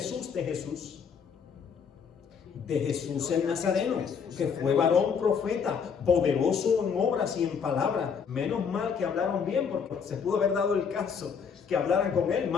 de Jesús el Nazareno, que fue varón profeta, poderoso en obras y en palabras. Menos mal que hablaron bien, porque se pudo haber dado el caso que hablaran con él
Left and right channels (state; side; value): quieter; right; 6.4 dB